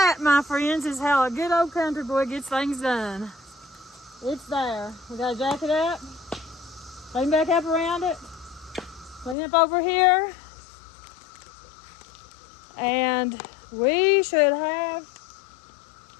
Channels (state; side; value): drops out; right; at 9.3 s